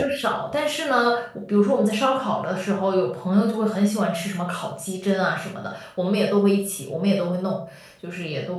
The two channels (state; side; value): identical; both; correlation 1.00